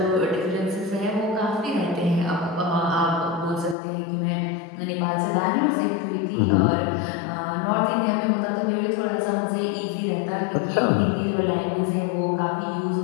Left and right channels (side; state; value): right; drops out; at 3.8 s